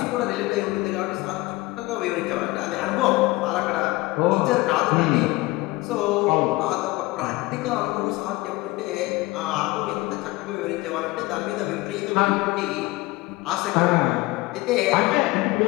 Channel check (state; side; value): quieter; right; 20.9 dB